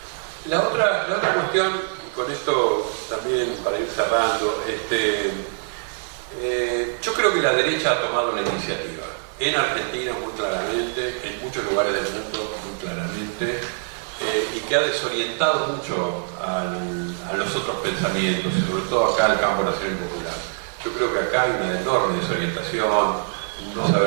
La otra cuestión, y con esto también para ir cerrando, yo creo que la derecha ha tomado la iniciativa. En Argentina muy claramente, en muchos lugares del mundo muy claramente, y que ha desorientado mucho a los otros pensamientos, y sobre todo acá al campo nacional y popular. Yo creo que acá hay una enorme desorientación, no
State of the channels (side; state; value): left; silent; digital silence